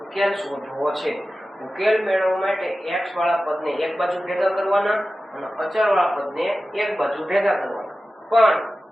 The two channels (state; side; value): normal; both; correlation 0.94